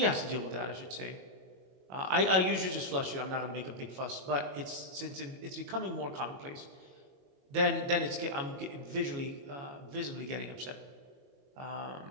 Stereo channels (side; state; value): left; late; 22 ms